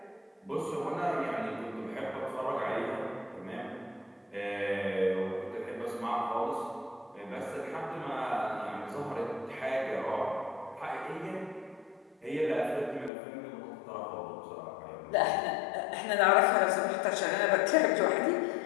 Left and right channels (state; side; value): drops out; right; at 13.1 s